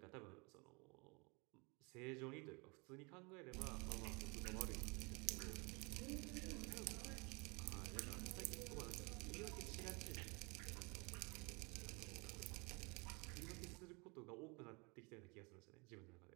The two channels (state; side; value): quieter; left; 29.9 dB